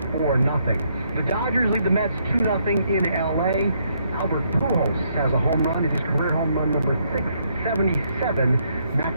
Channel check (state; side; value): inverted; both; correlation -0.73